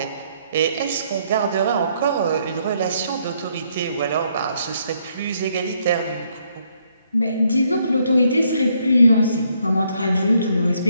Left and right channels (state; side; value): inverted; both; correlation -0.71